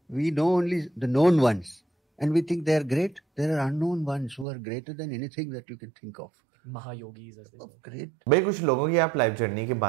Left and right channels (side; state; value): left; drops out; at 4.5 s